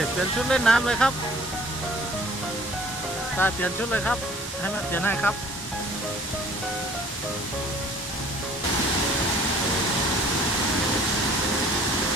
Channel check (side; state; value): both; normal; correlation 0.53